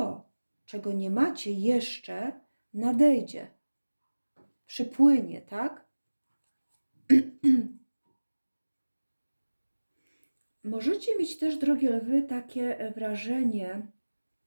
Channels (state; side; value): inverted; both; correlation -1.00